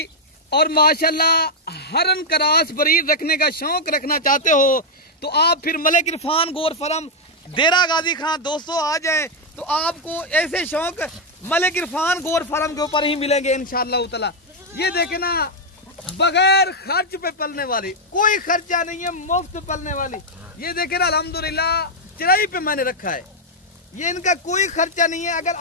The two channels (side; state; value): both; normal; correlation -0.01